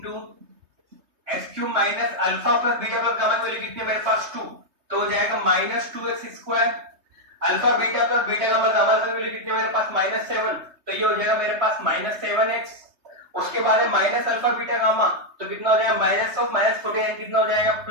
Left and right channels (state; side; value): late; left; 3.3 ms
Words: x cube minus alpha plus beta plus gamma की वैल्यू कितनी है मेरे पास 2, तो हो जाएगा -2x square alpha beta plus beta gamma gamma की वैल्यू कितनी है मेरे पास -7, तो ये हो जाएगा मेरे पास -7x। उसके बाद है माइनस अल्फा बीटा गामा, तो कितना हो जाएगा माइनस ऑफ -14 कितना हो जाएगा